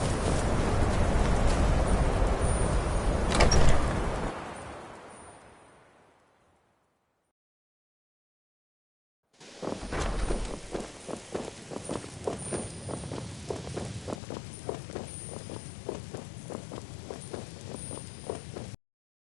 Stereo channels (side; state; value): right; drops out; at 14.2 s